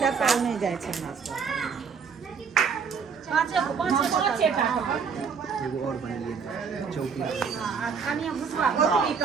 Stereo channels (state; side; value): quieter; left; 6.0 dB